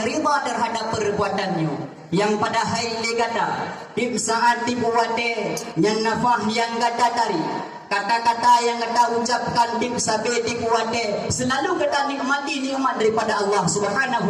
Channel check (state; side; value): identical; both; correlation 1.00